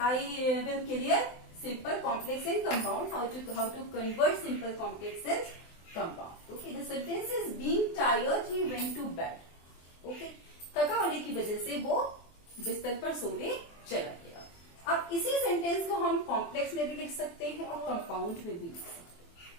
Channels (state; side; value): late; right; 23 ms